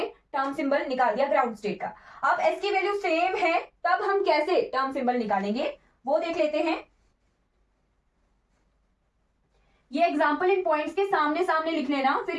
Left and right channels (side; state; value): both; identical; correlation 1.00